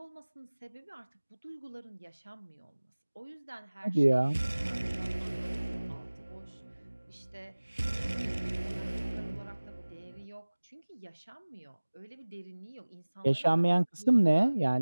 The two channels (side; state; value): both; inverted; correlation -1.00